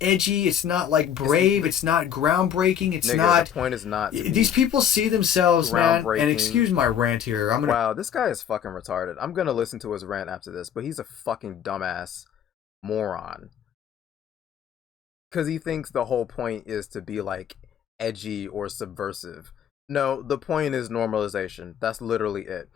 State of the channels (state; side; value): quieter; right; 9.1 dB